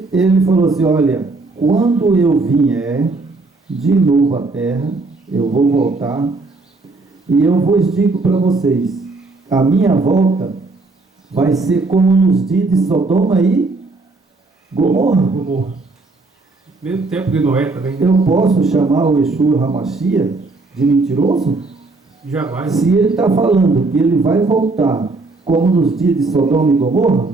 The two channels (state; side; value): quieter; left; 3.5 dB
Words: falou assim, olha, quando eu vier de novo à terra, eu vou voltar, e eu vos digo para vocês, a minha volta vai ser como nos dias de Sodoma e Gomorra. Mesmo tempo de Noé também. Eu posso chamar o Yeshua HaMashiach de mentiroso? Jamais. Se ele está falando que ele vai voltar como nos dias de Sodoma e Gomorra,